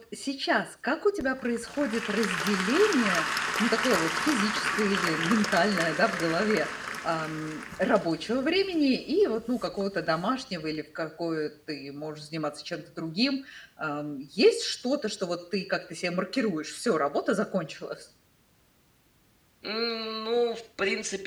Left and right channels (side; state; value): both; identical; correlation 1.00